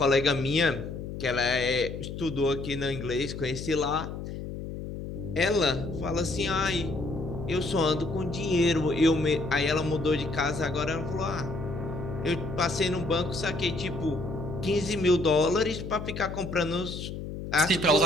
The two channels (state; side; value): noise; left; hum, 8 dB below the sound